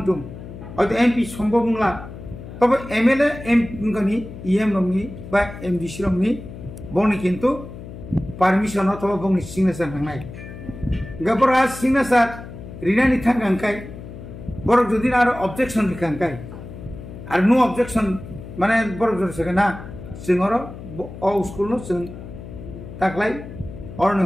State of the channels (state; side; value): noise; left; hum, 13 dB below the sound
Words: अतो एमपी सम्भव नंला तब एमएलए एमगनि इएम रंगनि बा एमडीसी रंगनि बनि किन्तु पारमिशन अथवा बनि सिग्नेचार नांनाय गबरा सिग्नेचार रिनानि थांगांखाय बरक जदि आरो ऑब्जेक्शन रिखांखाय आरो नो ऑब्जेक्शन माने बरक जदि सगना जोंरो अ स्कुल नो जों ताकलाय अरने